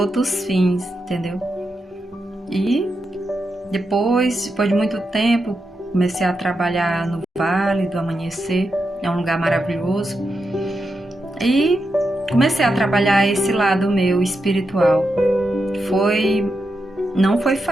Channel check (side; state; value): both; normal; correlation 0.86